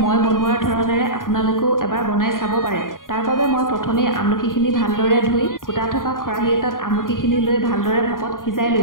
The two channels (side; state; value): right; late; 0.90 ms